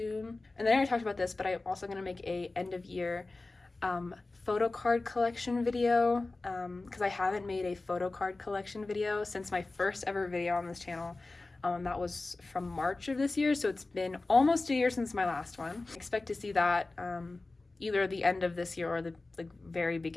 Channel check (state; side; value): quieter; right; 3.3 dB